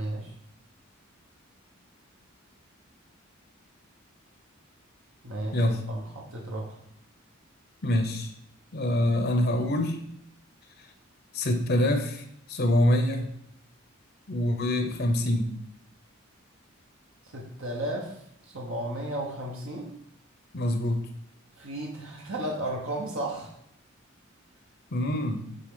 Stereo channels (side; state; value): both; normal; correlation 0.64